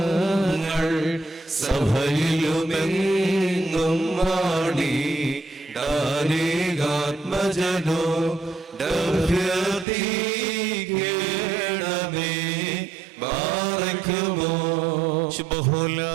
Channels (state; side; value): drops out; left; at 9.9 s